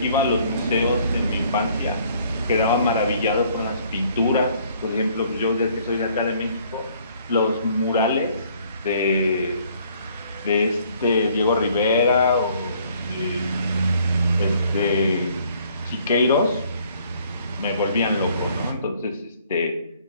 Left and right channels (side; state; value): both; inverted; correlation -0.61